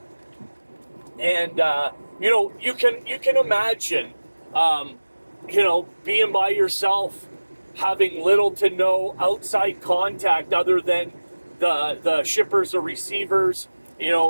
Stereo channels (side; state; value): both; inverted; correlation -1.00